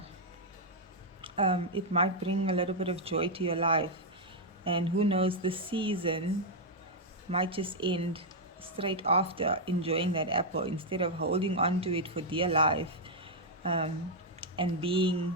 It might bring a little bit of joy to your life. And who knows, the season might just end straight after enjoying that apple, instead of holding on to it for dear life, and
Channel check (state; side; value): normal; both; correlation -0.03